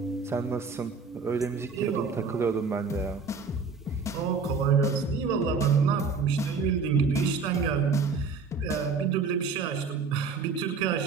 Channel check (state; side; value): quieter; left; 4.8 dB